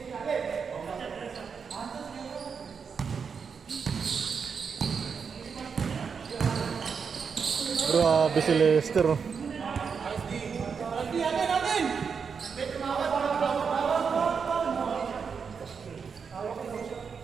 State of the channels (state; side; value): quieter; left; 6.0 dB